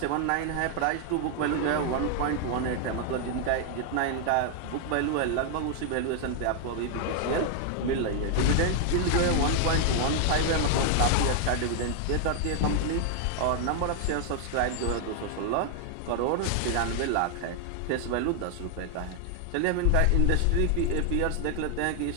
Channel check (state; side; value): different; both; correlation 0.00